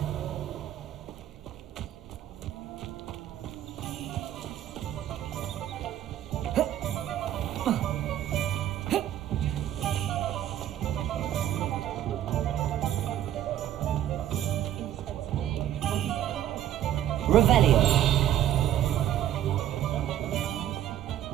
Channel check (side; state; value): left; quieter; 11.6 dB